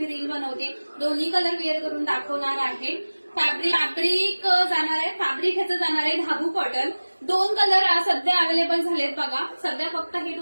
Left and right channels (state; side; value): inverted; both; correlation -1.00